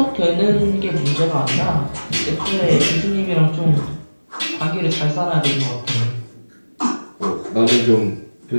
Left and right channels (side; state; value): both; inverted; correlation -1.00